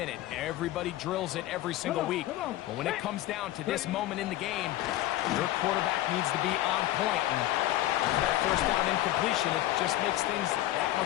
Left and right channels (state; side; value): quieter; right; 14.9 dB